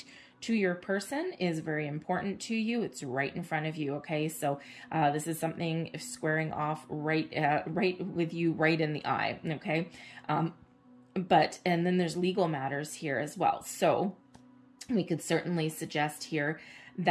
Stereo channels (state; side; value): identical; both; correlation 1.00